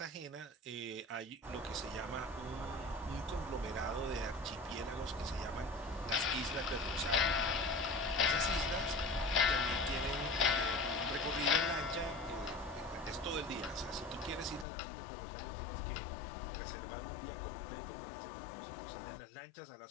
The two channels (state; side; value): drops out; right; at 14.7 s